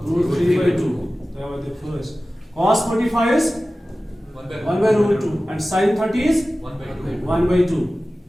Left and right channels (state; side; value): normal; both; correlation 0.96